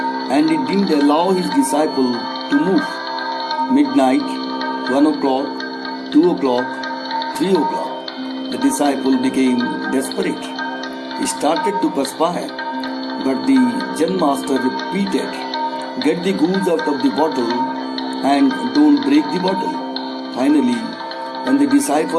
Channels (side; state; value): both; identical; correlation 1.00